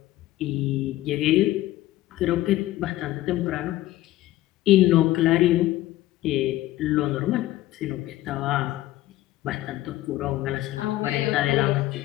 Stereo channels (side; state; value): right; quieter; 15.8 dB